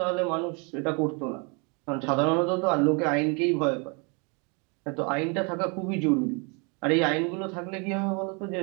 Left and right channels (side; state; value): left; quieter; 33.1 dB